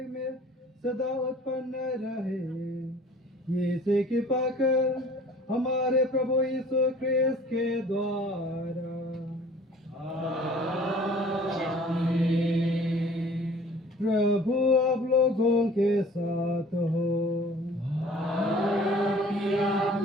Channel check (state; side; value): normal; both; correlation 0.50